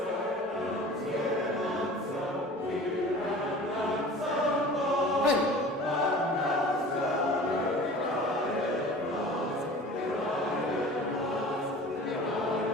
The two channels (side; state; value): both; normal; correlation 0.41